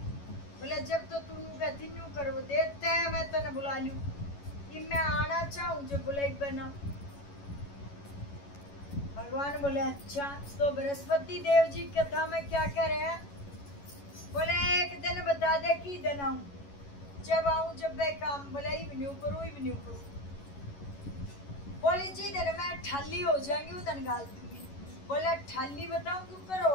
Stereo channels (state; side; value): late; right; 11 ms